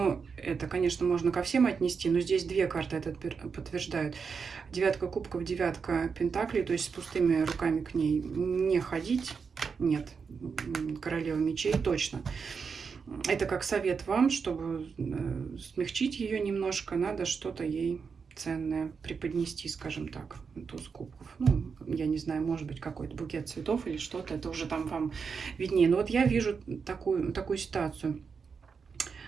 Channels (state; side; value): quieter; left; 5.7 dB